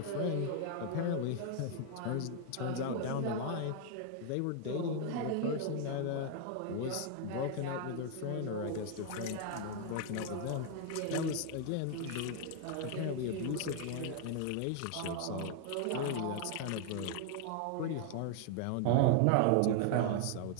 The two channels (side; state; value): both; different; correlation 0.00